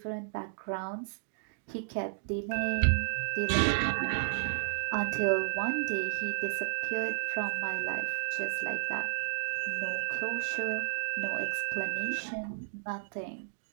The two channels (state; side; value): silent; left; digital silence